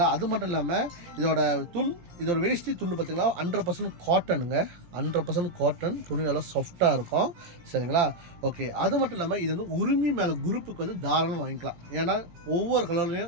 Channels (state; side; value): late; left; 17 ms